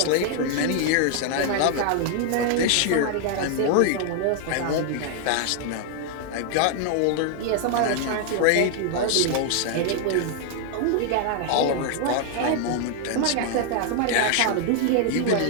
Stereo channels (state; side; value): different; both; correlation 0.00